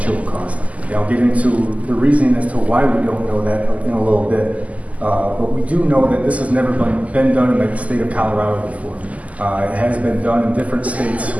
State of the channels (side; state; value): left; late; 0.071 ms